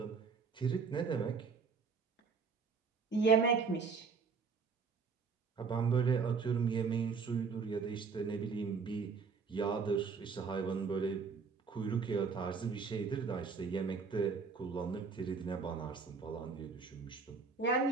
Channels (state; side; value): quieter; left; 5.2 dB